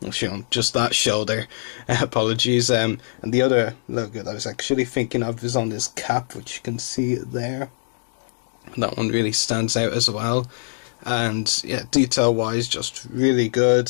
Actually, on just that shoulder. Apologies. And the other logo that I was actually thinking of is on his cap, which you can see there. That one really stands out as well, and yeah, detail wise just really good,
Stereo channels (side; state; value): right; silent; digital silence